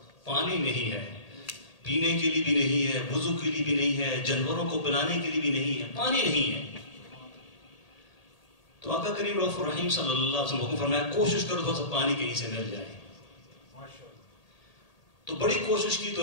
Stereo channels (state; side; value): late; right; 1.8 ms